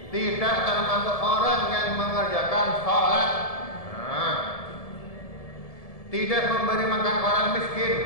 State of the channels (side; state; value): right; late; 1.7 ms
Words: tidak termasuk orang yang mengerjakan sholat. tidak memberi makan orang